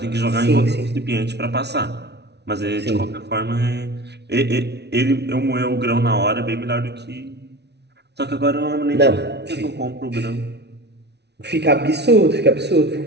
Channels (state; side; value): late; left; 0.49 ms